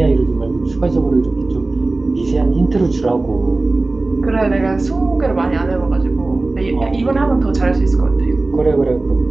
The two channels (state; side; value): quieter; left; 3.2 dB